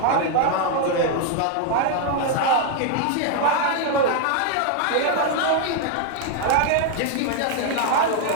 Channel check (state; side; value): different; both; correlation 0.01